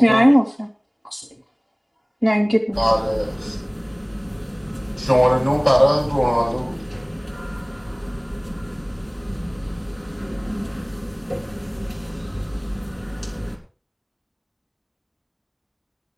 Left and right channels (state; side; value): identical; both; correlation 1.00